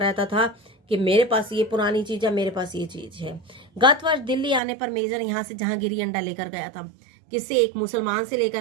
था कि मेरे पास ये पुरानी चीज है, मेरे पास ये चीज है। गत वर्ष दिल्ली आने पर मेजर यहाँ से जहांगीरी अंडा लेकर गया था। किससे, एक मुसलमान से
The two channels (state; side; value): drops out; left; at 4.6 s